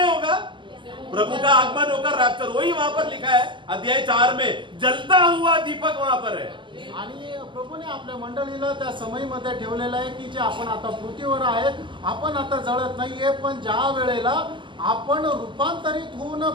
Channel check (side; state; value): left; late; 0.24 ms